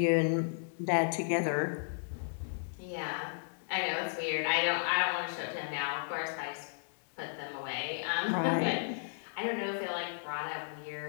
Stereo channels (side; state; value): right; silent; digital silence